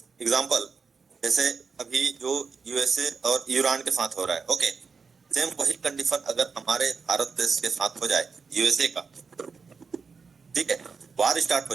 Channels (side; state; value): left; quieter; 5.2 dB